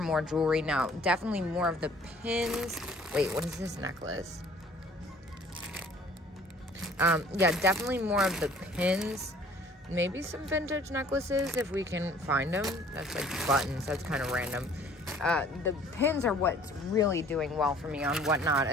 jewelry now. Definitely more of the pins. Wait, what is this necklace? Yeah, definitely more of the pins. Maybe some vintage necklaces if we can find them. That's like buttons, that's kind of random. The pins are what's really doing well for me on Whatnot,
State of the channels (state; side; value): normal; both; correlation 0.54